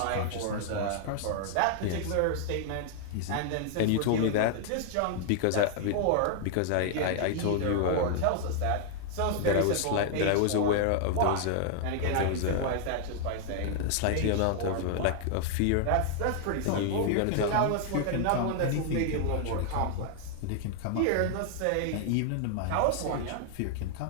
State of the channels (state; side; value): different; both; correlation 0.00